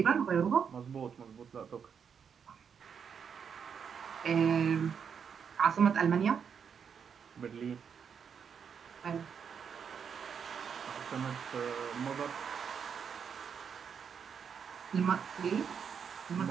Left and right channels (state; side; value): quieter; left; 7.0 dB